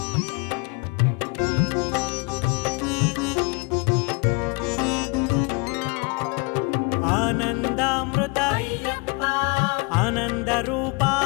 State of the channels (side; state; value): right; quieter; 29.3 dB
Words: ఆనందామృత అయ్యప్ప ఆనంద రూప